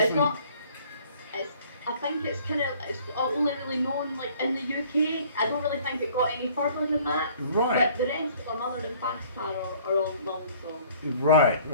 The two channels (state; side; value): inverted; both; correlation -0.55